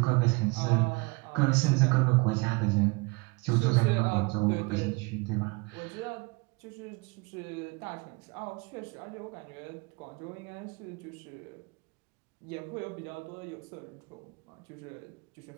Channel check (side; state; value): left; quieter; 27.2 dB